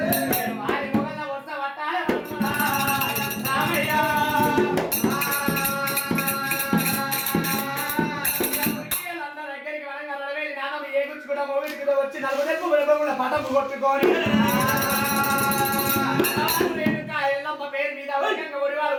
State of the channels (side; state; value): both; identical; correlation 1.00